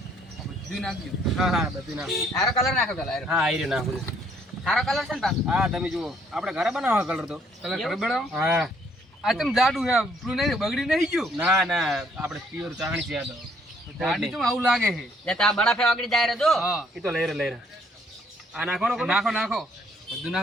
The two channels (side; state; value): both; normal; correlation 0.66